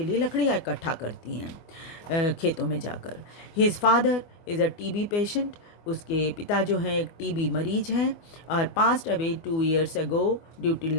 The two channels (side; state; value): right; late; 24 ms